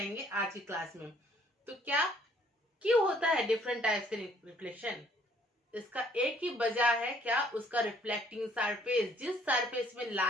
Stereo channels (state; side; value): normal; both; correlation 0.62